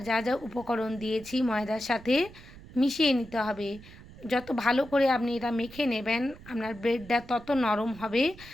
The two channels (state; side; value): noise; right; rumble, 18 dB below the sound